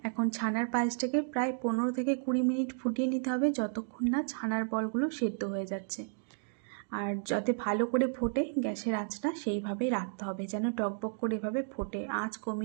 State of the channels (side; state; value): left; silent; digital silence